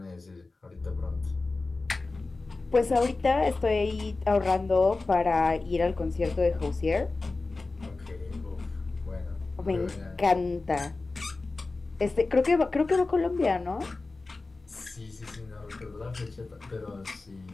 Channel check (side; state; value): right; quieter; 3.5 dB